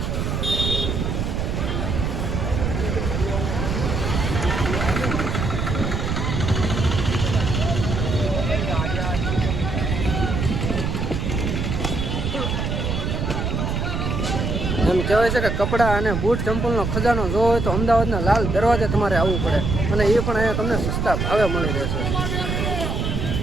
એમ કહેવાય છે કે કપડાં અને બૂટ ચંપલનો ખજાનો જોવો હોય તો અમદાવાદના લાલ દરવાજે તમારે આવવું પડે અને એ પણ અહીંયા તમને સસ્તા ભાવે મળી રહેશે.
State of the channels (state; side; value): noise; right; rumble, 1 dB below the sound